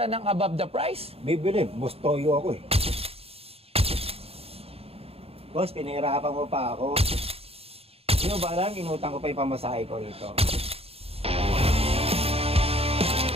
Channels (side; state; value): left; late; 0.29 ms